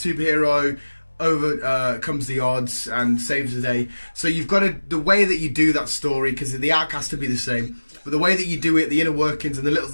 overcomes the odds and saves the day. So you've got to, the way that you do that story, because the arc has to be the same, but the way that you do it, the inner workings and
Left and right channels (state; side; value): inverted; both; correlation -1.00